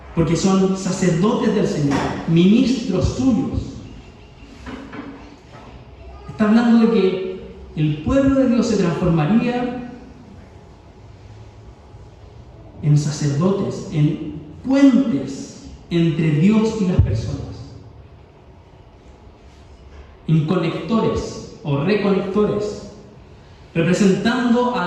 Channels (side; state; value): both; identical; correlation 1.00